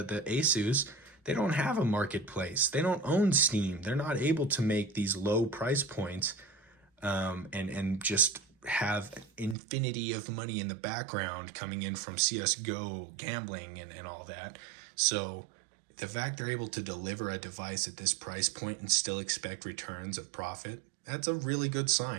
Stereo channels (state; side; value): drops out; left; at 9.6 s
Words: Asus. They don't have a marketplace. They don't own Steam. They're not able to make these low price points and just have infinity of money in the background coming in from CSGO gambling and all that. So the fact they're able to deliver a device at this price point and still expect returns of profit, that's a really good